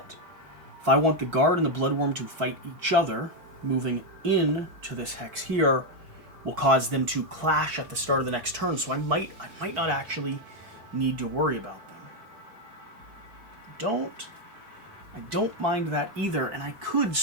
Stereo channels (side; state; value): left; late; 4.6 ms